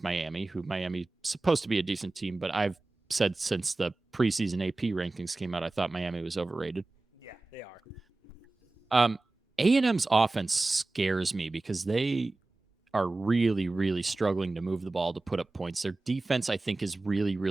Miami, who Miami's supposed to be a decent team, but I've said since the preseason AP rankings came out, I thought Miami was overrated. Yeah, they are. A&M's offense scares me because they are really, really struggling to move the ball to put up points. Their defense, I think, is really,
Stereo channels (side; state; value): left; quieter; 3.2 dB